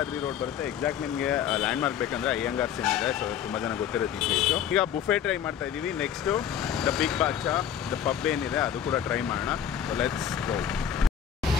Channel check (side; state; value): right; quieter; 9.0 dB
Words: ರೋಡ್ ಬರುತ್ತೆ. ಎಕ್ಸಾಕ್ಟ್ ನಿಮಗೆ ಲ್ಯಾಂಡ್ ಮಾರ್ಕ್ ಬೇಕಂದ್ರೆ ಅಯ್ಯಂಗಾರ್ಸ್ ಏನಿದೆ. ಸೊ ತುಂಬ ಜನ ಗೊತ್ತಿರುತ್ತೆ ಈ ಪ್ಲೇಸು. ಈಗ ಬುಫೆ ಟ್ರೈ ಮಾಡ್ತಾ ಇದ್ದೀವಿ. ನೆಕ್ಸ್ಟು ದ ಬಿಗ್ ಬಾಚಾ, ದ ಪಬ್ ಏನಿದೆ ಅದು ಕೂಡ ಟ್ರೈ ಮಾಡೋಣ. So let's go.